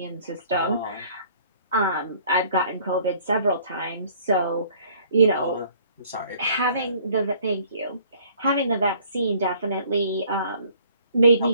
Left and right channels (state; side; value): inverted; both; correlation -0.57